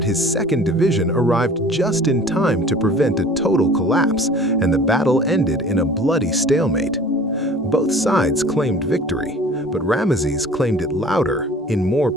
his second division arrived just in time to prevent a total collapse, and the battle ended in a bloody stalemate. Both sides claimed victory, but Ramesses claimed it louder, in more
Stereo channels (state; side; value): normal; both; correlation 0.46